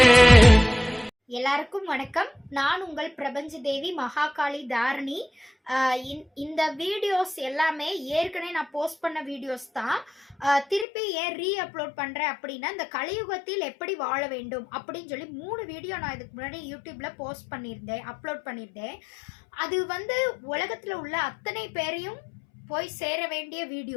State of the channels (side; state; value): right; drops out; at 10.9 s